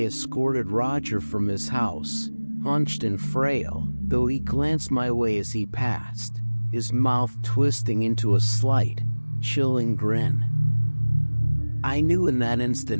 escorted Roger from his house, hunched and frail, though he glanced my way as he passed, his mouth twisting into a slight, chilling grin. I knew in that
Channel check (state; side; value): inverted; both; correlation -1.00